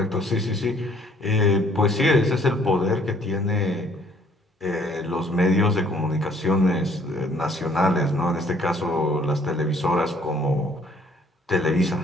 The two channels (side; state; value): both; normal; correlation 0.61